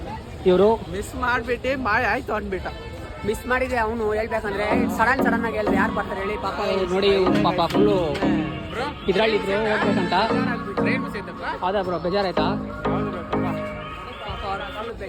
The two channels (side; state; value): both; identical; correlation 1.00